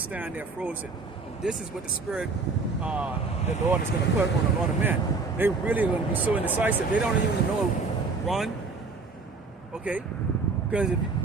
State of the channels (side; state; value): left; quieter; 4.2 dB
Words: there frozen. And this is what the Spirit, the Lord is going to put on a lot of men. They really are going to be so indecisive. They don't even know run. Okay? Because